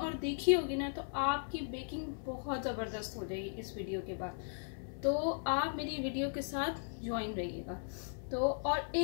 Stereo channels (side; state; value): right; silent; 53 dB below the other